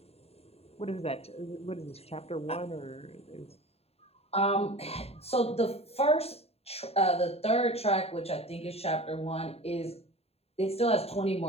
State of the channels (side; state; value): right; late; 0.29 ms